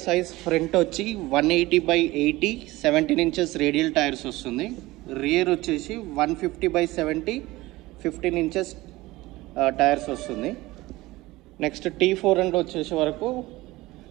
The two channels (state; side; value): quieter; left; 19.3 dB